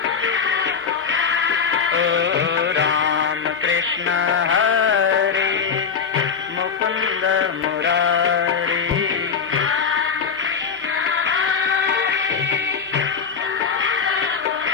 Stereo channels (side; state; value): right; quieter; 6.3 dB